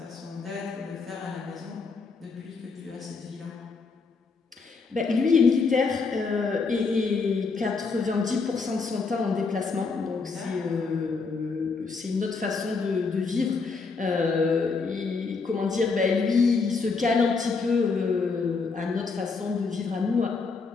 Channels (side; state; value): right; quieter; 4.6 dB